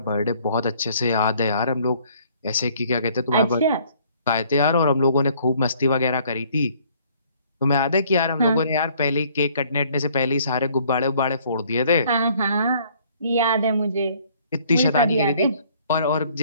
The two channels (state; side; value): inverted; both; correlation -0.60